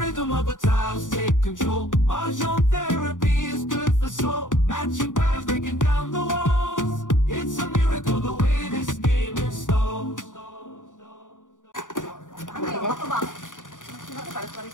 of the tiles take control. Mahjong therapy is good for soul. Matching patterns, breaking down the walls. It's a miracle the way this game installs.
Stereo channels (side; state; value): right; late; 0.87 ms